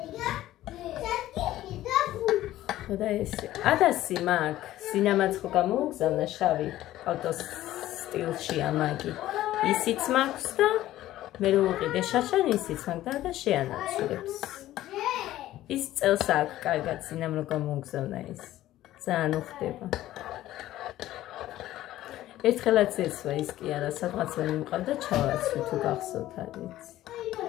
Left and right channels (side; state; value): right; quieter; 14.5 dB